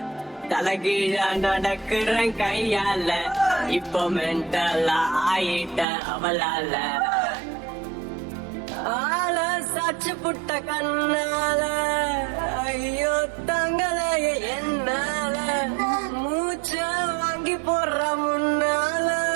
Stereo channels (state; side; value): drops out; left; at 5.9 s